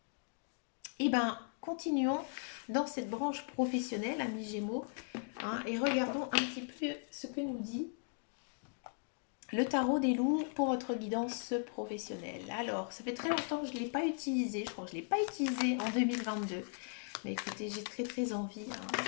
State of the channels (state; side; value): silent; right; 53 dB below the other